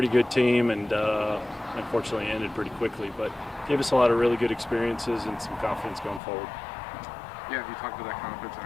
good team, and unfortunately ended pretty quickly. But gave us a lot of really good experiences and some confidence going forward. Yeah, you talked about that confidence and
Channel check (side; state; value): right; drops out; at 6.2 s